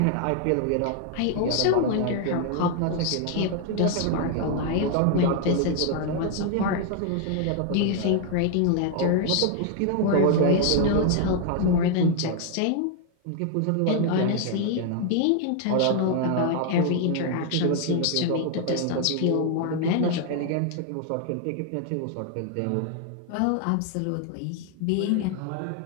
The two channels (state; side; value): different; both; correlation 0.00